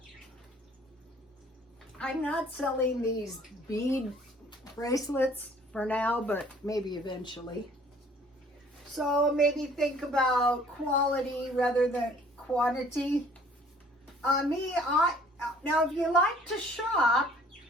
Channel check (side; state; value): both; normal; correlation 0.56